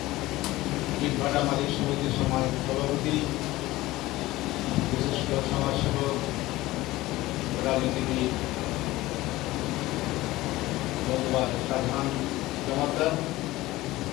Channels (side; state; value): right; quieter; 18.0 dB